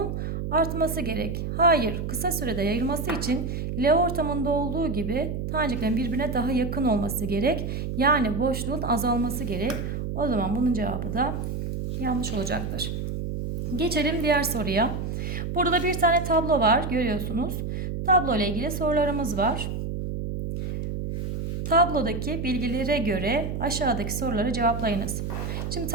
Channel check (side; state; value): right; noise; hum, 4 dB below the sound